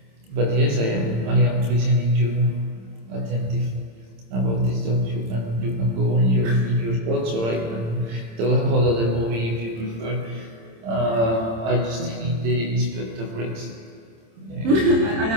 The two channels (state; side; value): late; left; 26 ms